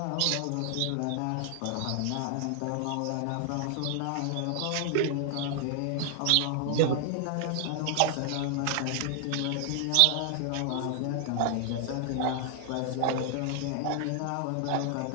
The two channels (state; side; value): different; both; correlation 0.00